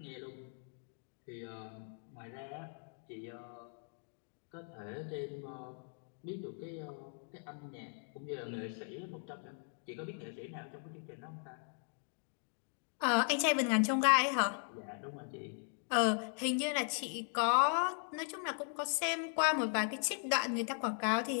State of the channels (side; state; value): right; silent; 52 dB below the other